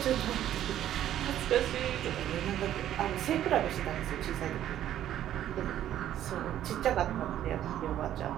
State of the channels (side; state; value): left; quieter; 11.7 dB